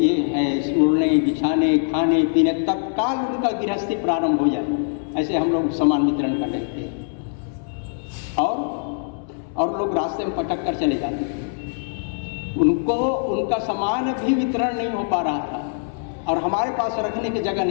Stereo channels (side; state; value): right; silent; digital silence